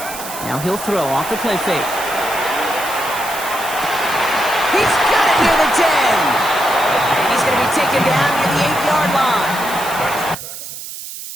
4. Now he'll throw off the play fake. He's got it near the 10. And he's going to be taken down near the 8-yard line.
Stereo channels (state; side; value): noise; right; hiss, 10 dB below the sound